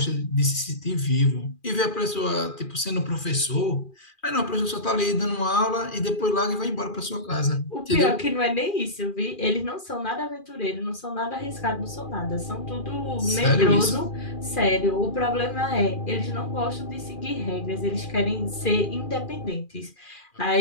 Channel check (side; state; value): right; late; 2.4 ms